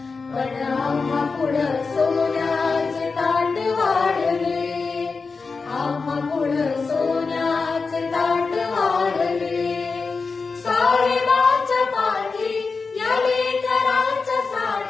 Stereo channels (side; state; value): right; quieter; 4.5 dB